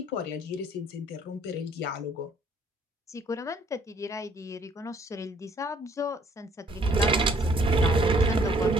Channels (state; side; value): normal; both; correlation 0.62